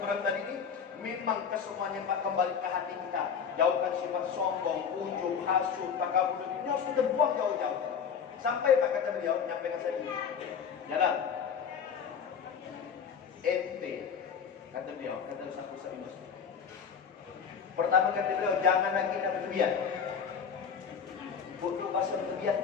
tadi ini, memang kesemuanya Pak kembali ke hati kita. Jauhkan sifat sombong, ujub, hasud, takabur. Ini harus kita buang jauh-jauh. Sampai Pak kata beliau, nyampaikan saya ini. Jalan. Ente, kata beliau, kata Ustaz Ibrahim. Pertama kata beliau, jangan lagi nak berlebihan. Butuh bahasa berlebihan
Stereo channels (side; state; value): right; quieter; 6.9 dB